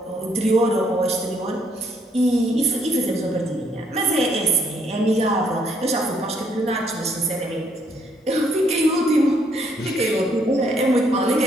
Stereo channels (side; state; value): both; normal; correlation 0.69